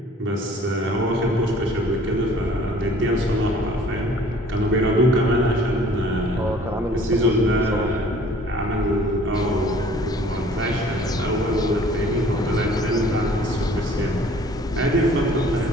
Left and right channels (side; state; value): both; normal; correlation 0.53